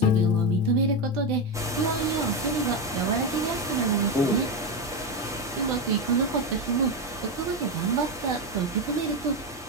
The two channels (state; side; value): normal; both; correlation 0.12